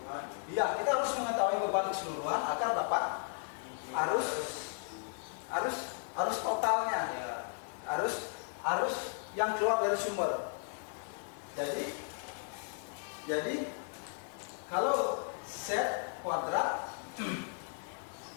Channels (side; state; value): right; silent; 54 dB below the other